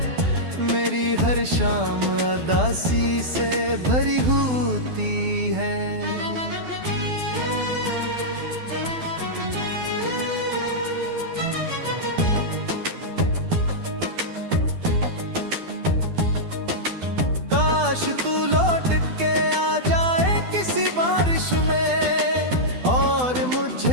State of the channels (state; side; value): late; left; 12 ms